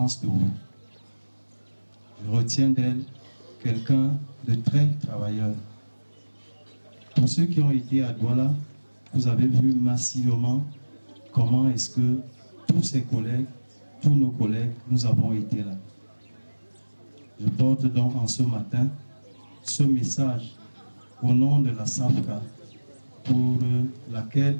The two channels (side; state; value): both; inverted; correlation -1.00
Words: de vous. Je retiens d'elle quelqu'un de très travailleur. Pour ceux qui ont été à Douala, vous avez vu massivement comment est-ce que tous ses collègues, tous nos collègues, nous avons été là. Je porte donc en ce matin ce message au nom de la SAFCA pour laquelle